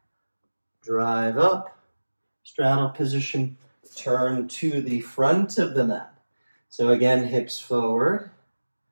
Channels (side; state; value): both; inverted; correlation -1.00